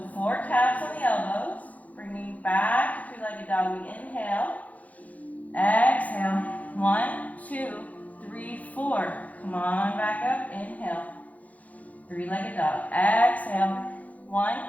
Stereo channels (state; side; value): late; right; 0.074 ms